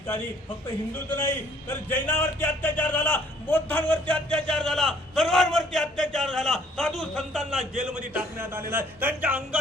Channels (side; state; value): both; normal; correlation 0.61